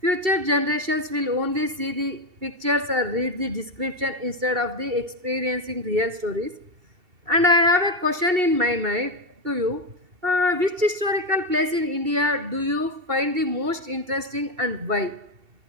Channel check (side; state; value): left; late; 2.7 ms